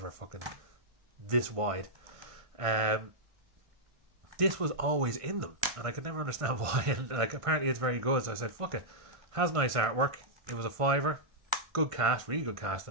fucking this wide. This was always in them, and I could never understand why. And like, apparently it's very good, so I said, fuck it. Has nice artwork. It was a £5. Good cast, really good cast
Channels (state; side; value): late; left; 1.5 ms